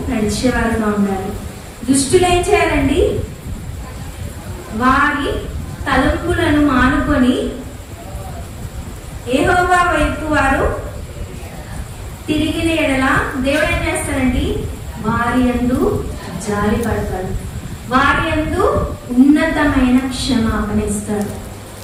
నడిచేవారుగా ఉండాలి. దుష్టులు ఏం చేయాలండి? వారి తలంపులను మానుకొని యెహోవా వైపు వారు తిరిగిన ఎడల దేవుడు ఏం చేస్తారండి? వారి యందు జాలి పడతాడు, వారి యందు ఉన్నతమైన క్షమాపణ ఇస్తాడు.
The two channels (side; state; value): both; identical; correlation 1.00